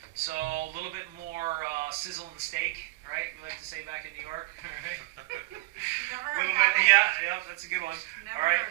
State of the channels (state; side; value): quieter; left; 23.4 dB